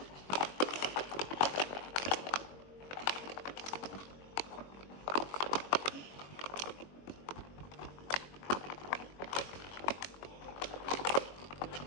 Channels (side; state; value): right; late; 21 ms